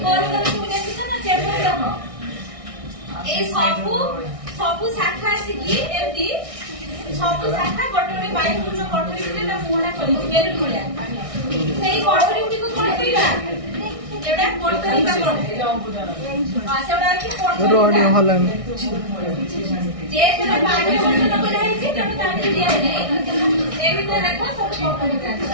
গোল গোল তুমি ଦେଖିଛ না চেপর দেখ এই সবু শাখা আসিকি এমতি সবু শাখা গোটে গোটে বায়ু পূর্ণ কোঠরি ভিতরে তা মুহা কৰিଛି বেলুন ভଳିଆ সেই কোঠরি গুটিକୁ কোন কইবা এটা কোঠরিকা সেটা কি কোঠরি হলাম যে যেন পানি বন্ধ করা হয়েছে তেমন তাকে দিয়া নেই এই ভিতরে দেখো সব কোঠরিকা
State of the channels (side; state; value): left; late; 1.6 ms